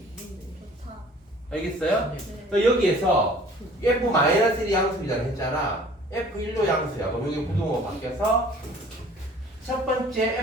누군데? 좋다. 알겠어요? 네. 그러니까 여기에서 f-1이 양수이라고 했잖아. f1도 양수야. 그럼 여기 부동호가 바뀌어서 첫 번째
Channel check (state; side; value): normal; both; correlation 0.51